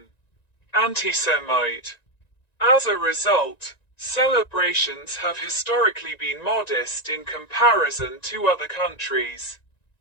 anti-Semite. As a result, celebrations have historically been modest in comparison to other countries.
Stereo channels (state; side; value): late; right; 1.9 ms